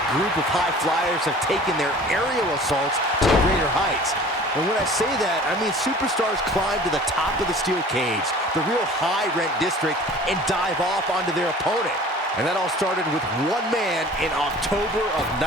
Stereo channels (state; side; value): normal; both; correlation 0.45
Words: group of high flyers have taken their aerial assaults to greater heights. And when I say that, I mean superstars climb to the top of the steel cage, the real high-rent district, and dive off onto their opponent. And that all started with one man in October of